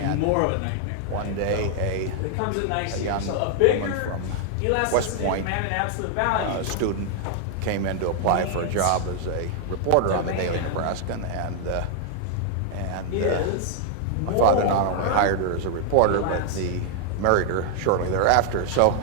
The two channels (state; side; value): different; both; correlation 0.00